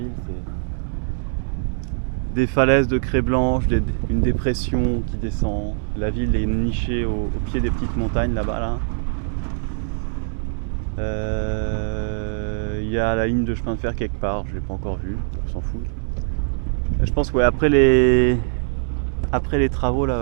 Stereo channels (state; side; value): silent; left; digital silence